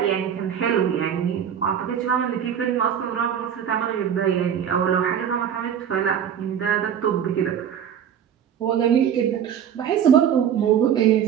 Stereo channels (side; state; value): left; quieter; 8.8 dB